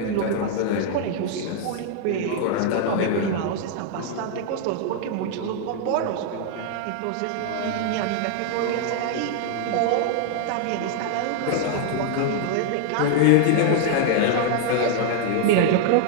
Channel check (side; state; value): both; different; correlation 0.00